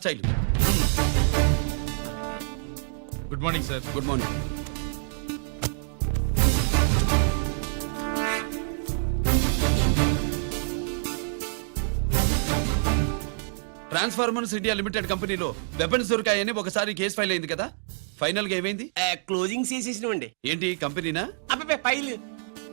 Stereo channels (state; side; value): silent; left; digital silence